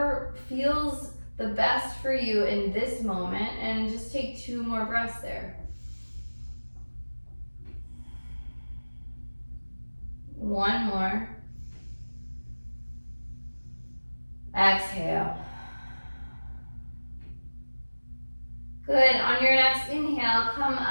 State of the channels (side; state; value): both; inverted; correlation -1.00